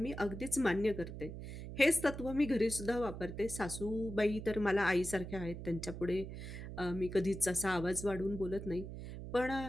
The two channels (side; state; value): right; noise; hum, 9 dB below the sound